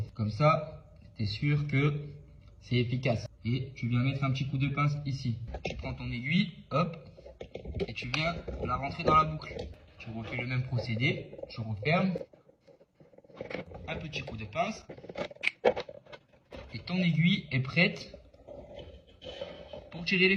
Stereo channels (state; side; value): identical; both; correlation 1.00